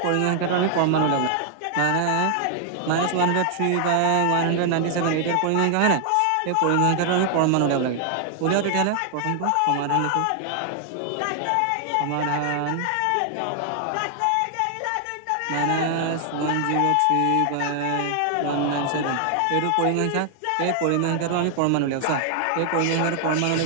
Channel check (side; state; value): both; different; correlation 0.00